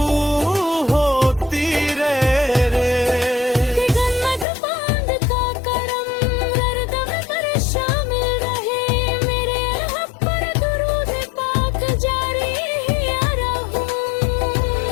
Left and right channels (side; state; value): right; drops out; at 4.5 s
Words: होती रहे रे। गन्नत बांध का करम हरदम पर शामिल रहे। मेरे हक पर दुरूद पाक जारी या रहूं।